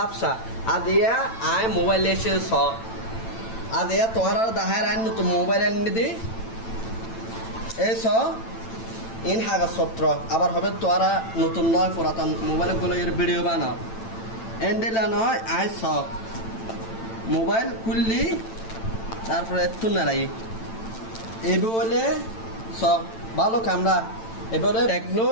আদিয়া আই মোবাইল এসে আদিয়া তোরা দাহার আইন নতুন মোবাইল এনে দি এই ইন হাগা সত্র আবার হবে তোরা নতুন নয় পুরাতন মোবাইল গুলো এর ভিডিও বানাও এন্ডেলা নয় আই মোবাইল খুললি তারপরে একটু নাড়াই এই বলে ভালো ক্যামেরা এবারে টেকনো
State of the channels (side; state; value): right; late; 8.9 ms